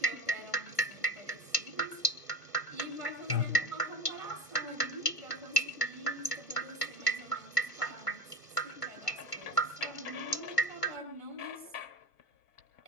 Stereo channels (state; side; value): late; right; 1.5 ms